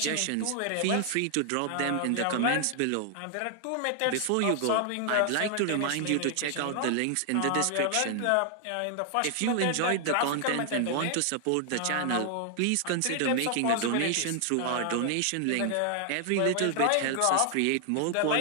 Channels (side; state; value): both; different; correlation 0.00